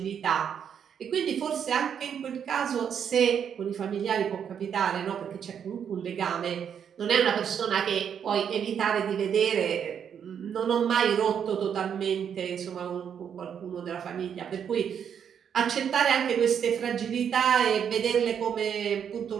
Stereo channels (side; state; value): left; quieter; 8.0 dB